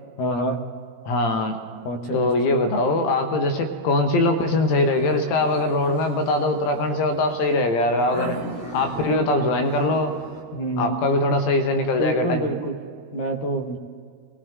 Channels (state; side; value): late; right; 13 ms